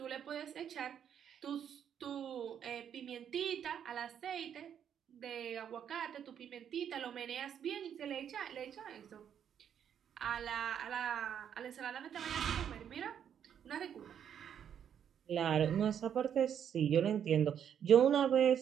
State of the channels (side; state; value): left; quieter; 8.8 dB